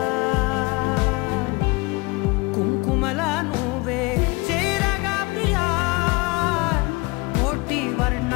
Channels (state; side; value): quieter; right; 25.4 dB